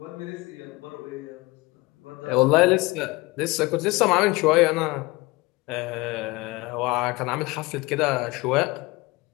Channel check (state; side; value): quieter; right; 22.8 dB